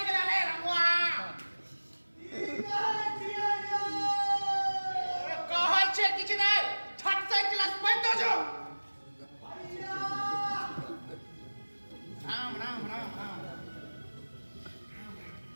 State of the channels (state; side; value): inverted; both; correlation -1.00